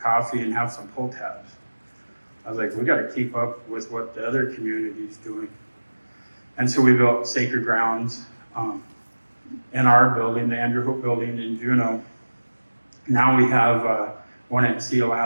coffee and have some pull tabs. I was like, we got to keep up with what the other community's doing. And so we built Sacred Grounds in our building, the Andrew Hope building in Juneau. Now we have one at Sea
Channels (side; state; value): both; inverted; correlation -1.00